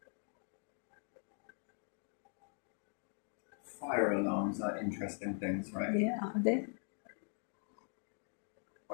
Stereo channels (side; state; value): right; silent; 50 dB below the other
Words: Fire alarms are interesting things, right? Yeah. They.